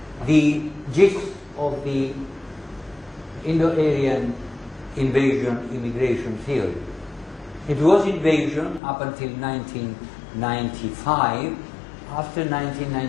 the gist of the Indo-Aryan invasion immigration theory. It was invasion up until 1995. After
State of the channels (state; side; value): drops out; right; at 8.8 s